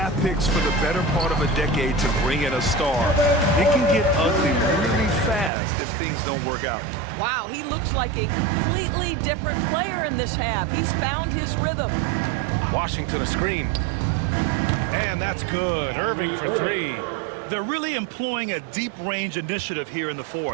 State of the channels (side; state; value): left; drops out; at 5.5 s